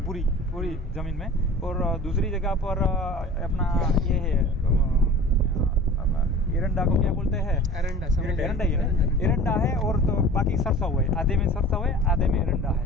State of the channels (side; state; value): both; normal; correlation 0.41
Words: पूरी जमीन में, और दूसरी जगह पर अपना ये है एरंडा को क्या बोलते हैं, एरंडा ही है ना, एरंडा है, और तो बाकी सरसों है, आधे में सरसों है आधे में एरंडा